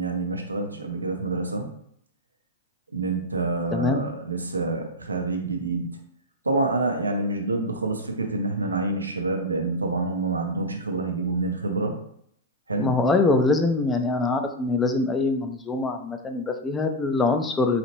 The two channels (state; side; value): normal; both; correlation 0.00